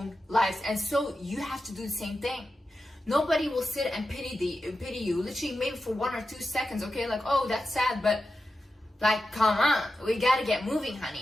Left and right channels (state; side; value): normal; both; correlation 0.91